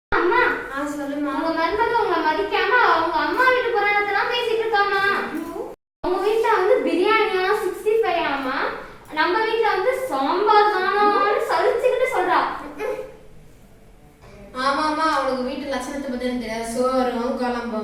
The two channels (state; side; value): identical; both; correlation 1.00